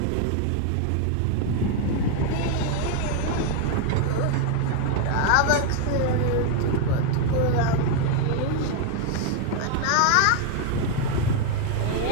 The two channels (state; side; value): different; both; correlation 0.01